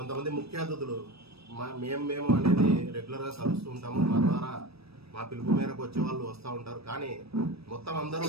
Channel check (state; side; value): late; left; 0.78 ms